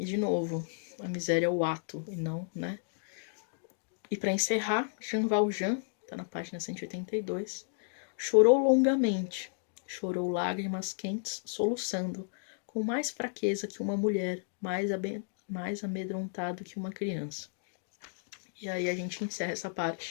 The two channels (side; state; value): right; silent; digital silence